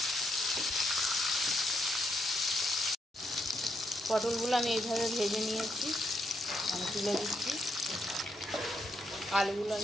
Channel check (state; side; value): normal; both; correlation 0.78